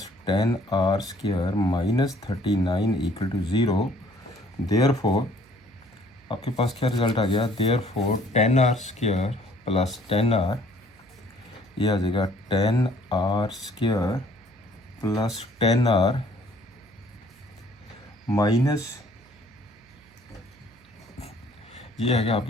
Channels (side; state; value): right; noise; hum, 29 dB below the sound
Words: 10r square minus 39 equal to 0। Therefore आपके पास क्या रिजल्ट आ गया, therefore 10r square plus 10r, ये आ जाएगा 10r square plus 10r minus ये आ गया